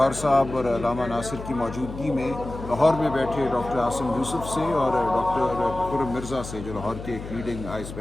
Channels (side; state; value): left; noise; hum, 11 dB below the sound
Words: صاحب اور علامہ ناصر کی موجودگی میں لاہور میں بیٹھے ڈاکٹر عاصم یوسف سے اور ڈاکٹر خرم مرزا سے جو لاہور کے ایک لیڈنگ آئی